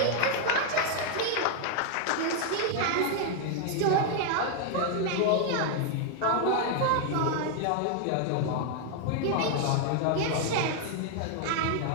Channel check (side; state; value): both; different; correlation 0.00